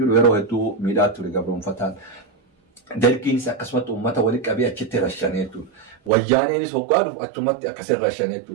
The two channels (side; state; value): left; drops out; at 6.1 s